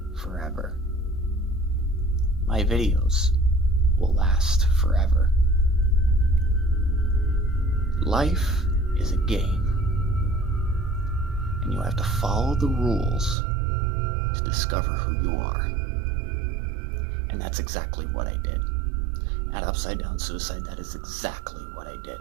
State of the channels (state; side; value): drops out; left; at 13.4 s